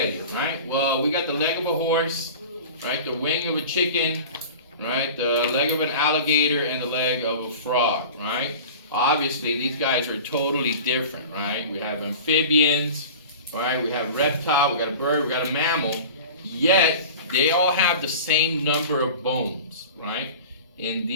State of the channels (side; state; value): both; inverted; correlation -0.37